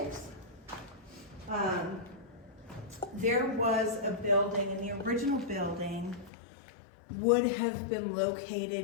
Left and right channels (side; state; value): right; drops out; at 6.3 s